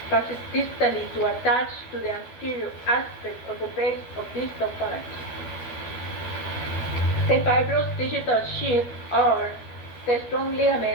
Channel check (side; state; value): right; late; 12 ms